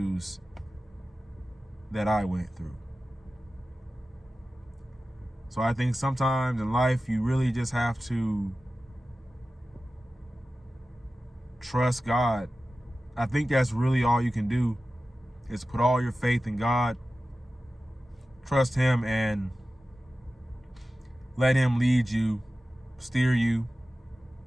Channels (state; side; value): normal; both; correlation 0.95